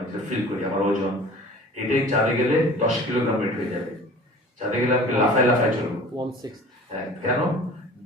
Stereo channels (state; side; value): normal; both; correlation 0.43